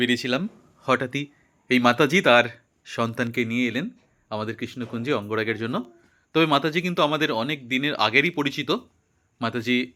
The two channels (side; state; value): both; identical; correlation 1.00